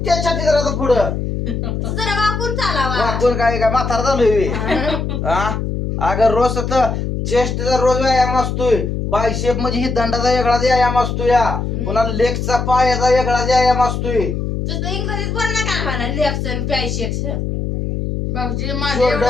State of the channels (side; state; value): left; noise; hum, 2 dB below the sound